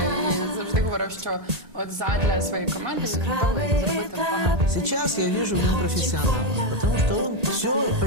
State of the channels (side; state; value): left; late; 1.8 ms